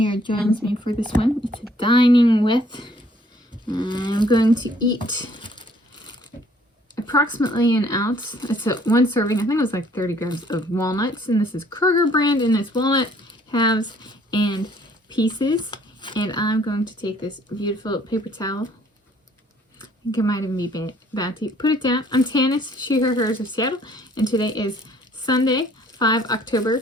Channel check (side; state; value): both; normal; correlation 0.60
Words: joins me for this one. It's a dining with. I'm going to eat approximately an ounce. It's one serving. I think it was like 30 grams of walnuts. And this is Kroger brand. And it's walnut, halves, and pieces. And I'm going to take this beautiful paper towel. I think it might even be Bounty. Put it down. I'm Tanis, she, her, hers of Seattle. And today is Sunday, 5 October